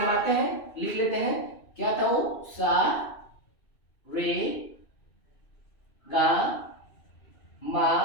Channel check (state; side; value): late; right; 2.6 ms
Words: आते हैं, लिख लेते हैं, क्या था वो? सा रे गा मा